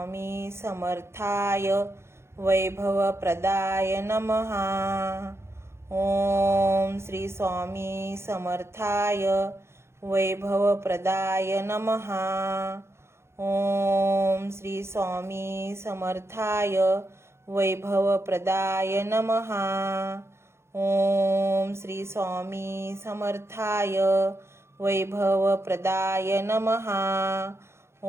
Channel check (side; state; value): left; late; 0.13 ms